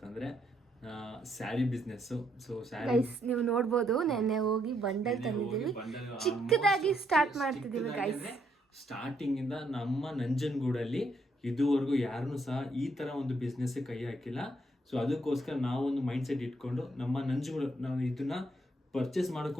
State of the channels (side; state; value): both; normal; correlation 0.73